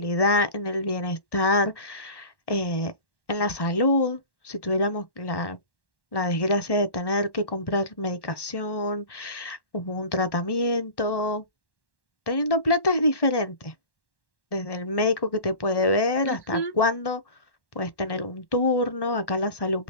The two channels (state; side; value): late; right; 1.1 ms